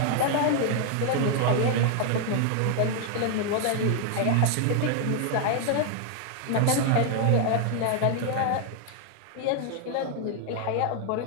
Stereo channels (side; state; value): both; different; correlation 0.00